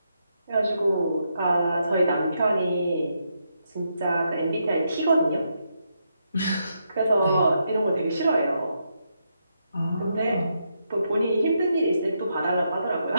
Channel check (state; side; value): inverted; both; correlation -0.80